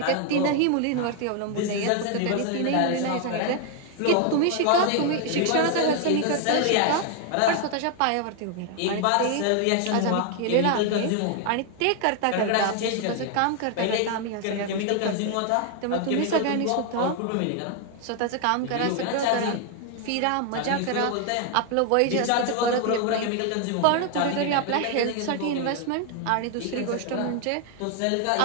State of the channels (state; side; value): different; both; correlation 0.01